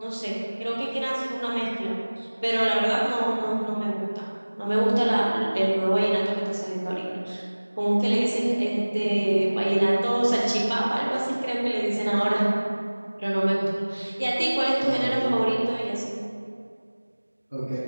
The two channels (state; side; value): inverted; both; correlation -1.00